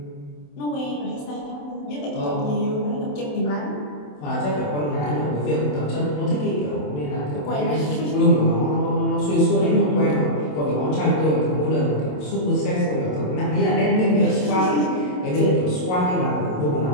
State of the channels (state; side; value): late; right; 27 ms